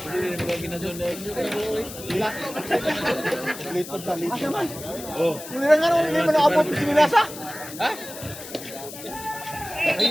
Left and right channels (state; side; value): noise; left; hiss, 13 dB below the sound